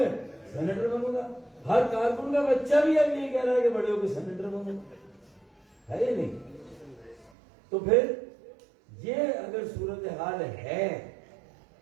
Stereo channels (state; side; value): drops out; left; at 7.3 s